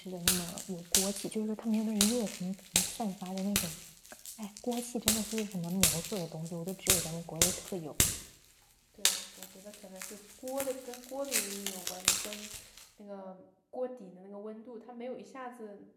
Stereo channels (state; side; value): identical; both; correlation 1.00